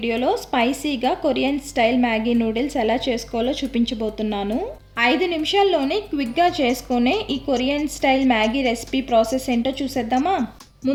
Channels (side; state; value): both; identical; correlation 1.00